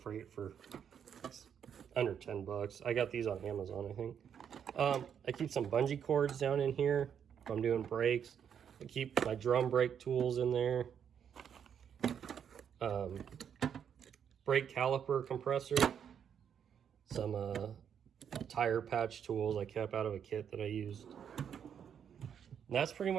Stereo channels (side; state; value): left; quieter; 8.2 dB